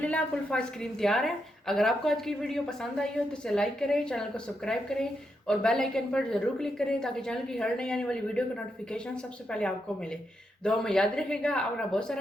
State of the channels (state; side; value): normal; both; correlation 0.83